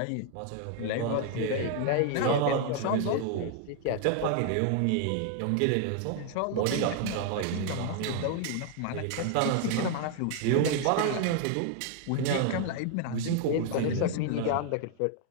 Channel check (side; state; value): both; different; correlation 0.00